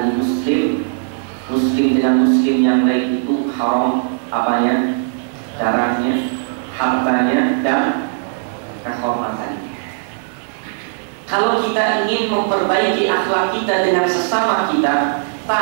muslim dengan muslim yang lain itu haram apanya? Darahnya, hartanya, dan kehormatannya. Kalau kita ingin memperbaiki akhlak kita dengan sesama kita,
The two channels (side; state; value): left; silent; digital silence